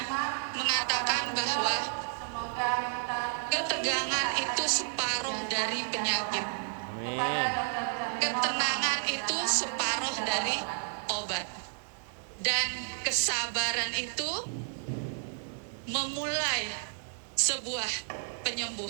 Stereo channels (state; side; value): silent; left; 57 dB below the other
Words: mengatakan bahwa ketegangan itu separuh dari penyakit. Amin. Ketenangan itu separuh dari obat. Dan kesabaran itu memulai sebuah